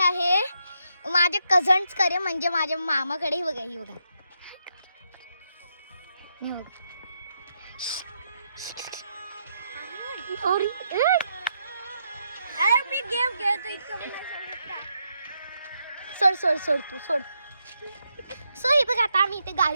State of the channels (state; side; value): inverted; both; correlation -0.80